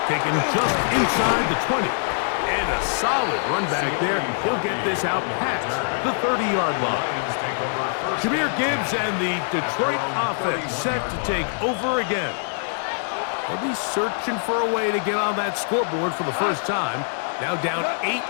taken just inside the 20. And a solid run back there. He'll get this out past the 30-yard line. Jahmyr Gibbs and the Detroit offense set to take over again. They'll be searching for a way to get on that scoreboard for the first time. Now down 8-0.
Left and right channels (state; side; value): silent; right; digital silence